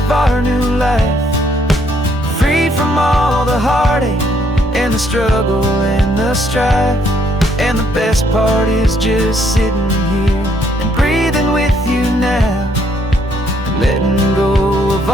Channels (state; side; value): normal; both; correlation 0.69